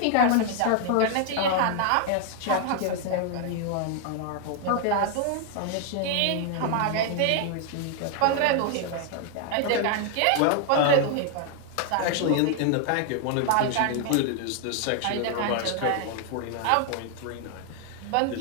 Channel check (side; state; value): both; different; correlation 0.00